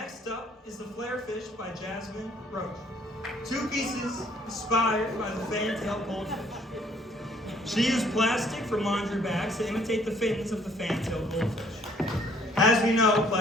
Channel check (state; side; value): normal; both; correlation 0.61